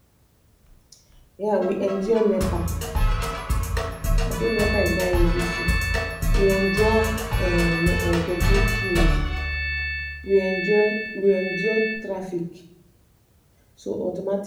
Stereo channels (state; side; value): identical; both; correlation 1.00